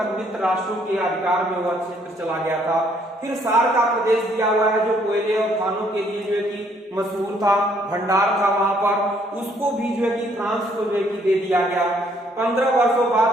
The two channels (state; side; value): normal; both; correlation 0.66